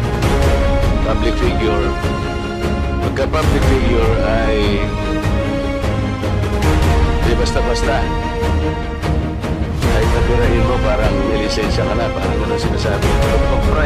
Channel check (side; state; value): both; identical; correlation 1.00